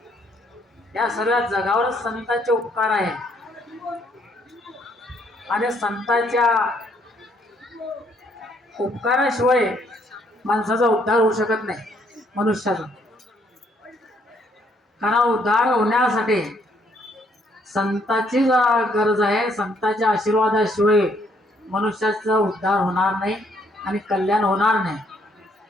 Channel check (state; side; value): normal; both; correlation 0.69